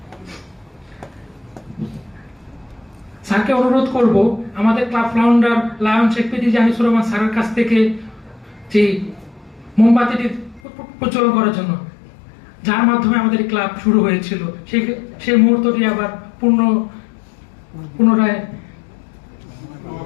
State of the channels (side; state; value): right; drops out; at 10.6 s